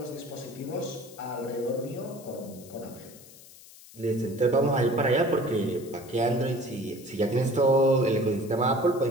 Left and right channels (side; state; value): left; noise; hiss, 20 dB below the sound